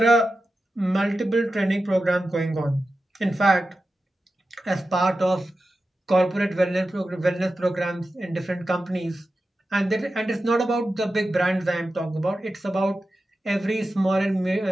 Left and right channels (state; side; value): normal; both; correlation 0.92